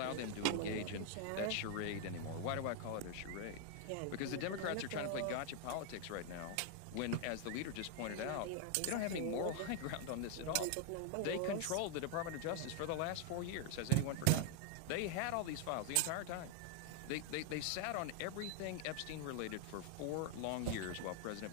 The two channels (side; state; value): both; different; correlation 0.00